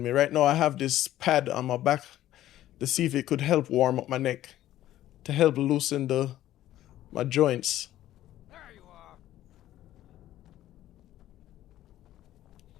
me. Right now I have this pad on my back to see if it could help warm up my neck. To help loosen my joints. There you are.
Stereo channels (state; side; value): quieter; right; 13.6 dB